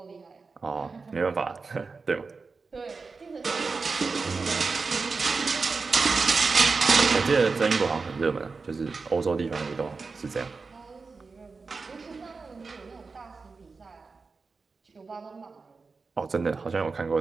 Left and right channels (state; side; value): quieter; left; 4.4 dB